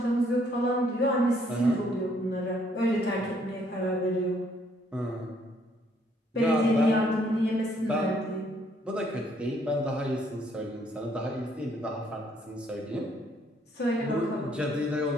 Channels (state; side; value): normal; both; correlation 0.67